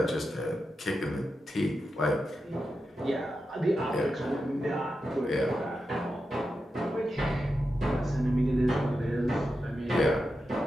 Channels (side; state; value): both; normal; correlation 0.89